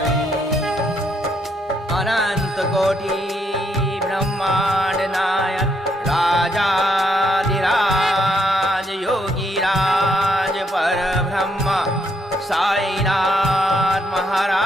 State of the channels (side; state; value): both; normal; correlation 0.75